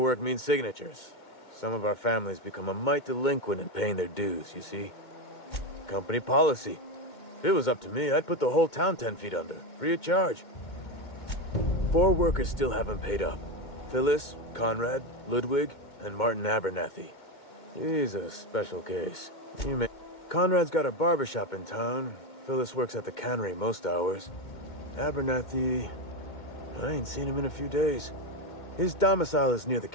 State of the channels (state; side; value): late; right; 2.2 ms